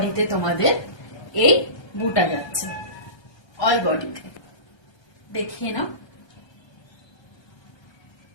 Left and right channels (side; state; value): right; late; 1.3 ms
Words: তোমাদের এই বুটা যাচ্ছে, অল বডিতে দেখিয়ে নাও।